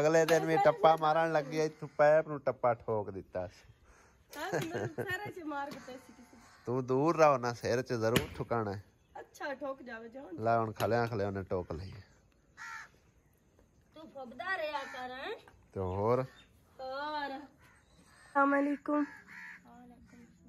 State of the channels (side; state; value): both; identical; correlation 1.00